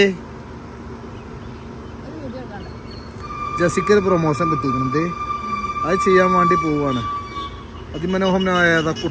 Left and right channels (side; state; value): both; identical; correlation 1.00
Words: ജസിക്കൊരു പ്രൊമോഷൻ കിട്ടിയിരിക്കണത്, അത് ചെയ്യാൻ വേണ്ടി പോവാണ്. അതിമനോഹരമായ